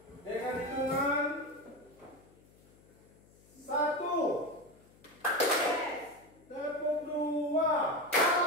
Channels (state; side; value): noise; left; hum, 28 dB below the sound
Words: Dengan hitungan 1, tepuk 2,